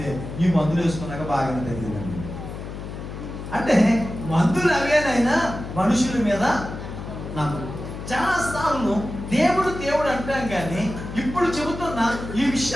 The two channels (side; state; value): left; noise; hum, 9 dB below the sound